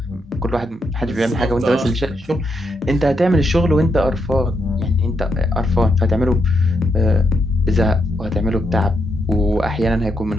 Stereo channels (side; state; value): both; normal; correlation 0.80